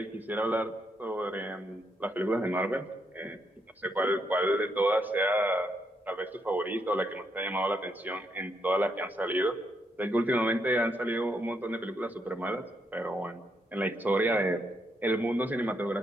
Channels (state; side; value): normal; both; correlation 0.78